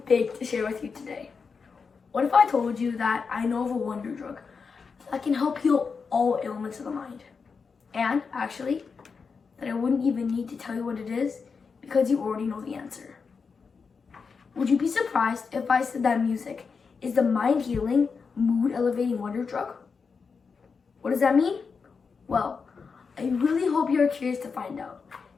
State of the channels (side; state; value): right; quieter; 5.3 dB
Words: big to share with you today. What if I told you that I know of a wonder drug that can help heal all ailments of the mind? And actually, that I wouldn't even need to tell you what it is because you already know the answer. Would you be surprised if I said that music is the mind healing, mood elevating wonder drug? What does that mean? Well, I really hope you're curious to find out,